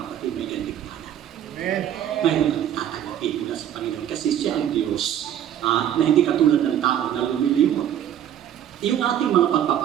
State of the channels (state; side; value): quieter; left; 10.5 dB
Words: kapatid, may gandigmanan. Mayroon kang tatanggapin mula sa Panginoon kasi siya ang Diyos na hindi katulad ng tao na lumilimot. Yung ating mga